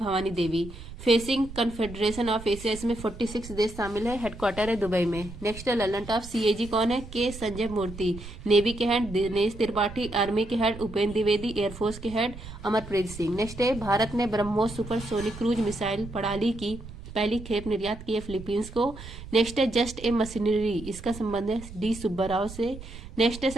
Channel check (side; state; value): right; noise; rumble, 13 dB below the sound